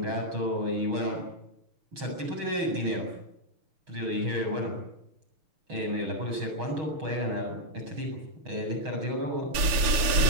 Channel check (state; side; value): late; left; 6.8 ms